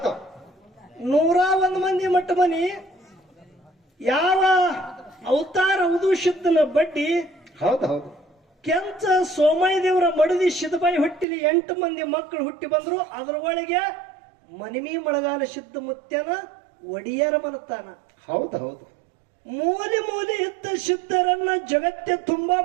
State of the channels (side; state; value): left; drops out; at 11.2 s